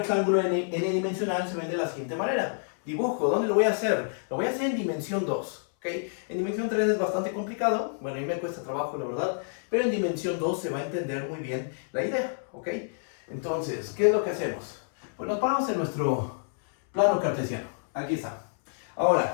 n-dimensional, se ven de la siguiente manera. Dibujo, ¿dónde lo voy a hacer? Lo voy a hacer en dimensión 2, ¿ok? En dimensión 3 es bastante complicado, bueno, a mí me cuesta trabajo, la verdad, pero en dimensión 2 se va a entender muy bien la idea, ¿ok? Entonces, ¿qué es lo que hacemos? Pues nos paramos en nuestro plano cartesiano, aquí está.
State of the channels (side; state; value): right; silent; 59 dB below the other